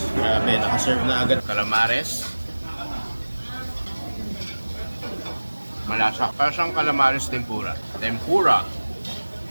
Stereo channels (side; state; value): both; inverted; correlation -1.00